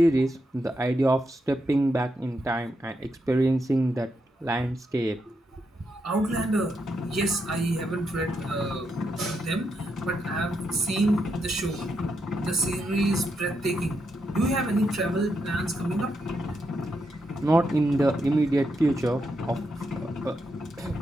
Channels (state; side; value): normal; both; correlation 0.82